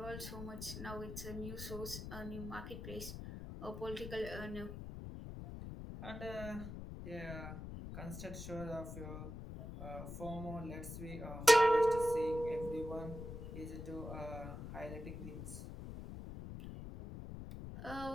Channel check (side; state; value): left; noise; rumble, 8 dB below the sound